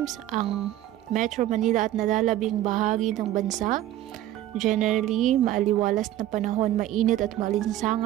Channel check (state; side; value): quieter; left; 13.4 dB